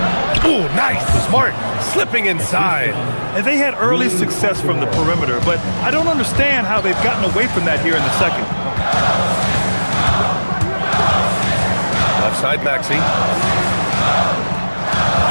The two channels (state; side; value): inverted; both; correlation -1.00